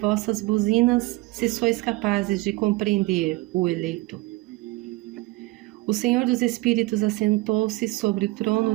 buzinas, se sois capazes de compreender o eleito. O Senhor dos Espíritos assentou-se sobre o trono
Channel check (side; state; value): left; quieter; 20.6 dB